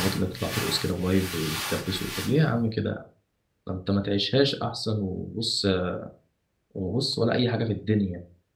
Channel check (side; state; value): both; identical; correlation 1.00